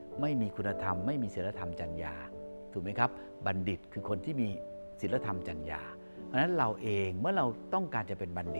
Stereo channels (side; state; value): both; inverted; correlation -1.00